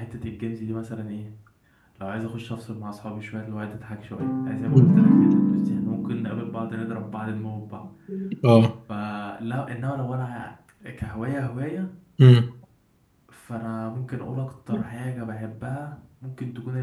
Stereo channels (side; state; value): both; identical; correlation 1.00